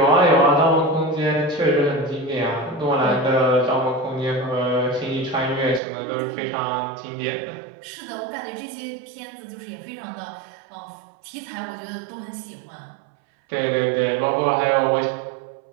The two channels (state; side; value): drops out; left; at 5.8 s